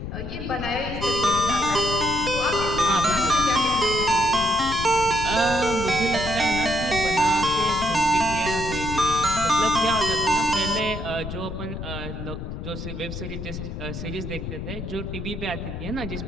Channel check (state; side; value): noise; left; rumble, 7 dB below the sound